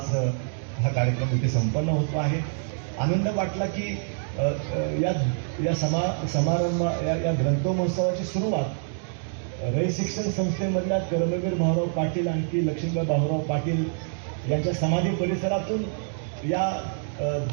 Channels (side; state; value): left; silent; digital silence